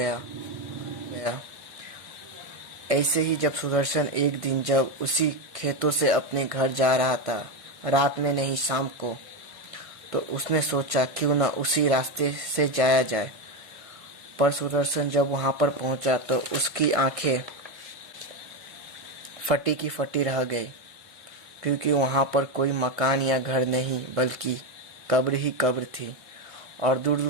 ऐसे ही जब सुदर्शन एक दिन जब उसी खेतों से अपने घर जा रहा था, रात में नहीं शाम को, तो उसने सोचा क्यों ना उसी रास्ते से जाया जाए। पर सुदर्शन जब वहां पर पहुंचा तो उसकी आंखें फटी की फटी रह गई, क्योंकि वहां पर कोई मकान या घर नहीं बल्कि कब्र ही कब्र थी, और दूर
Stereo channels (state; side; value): late; left; 1.5 ms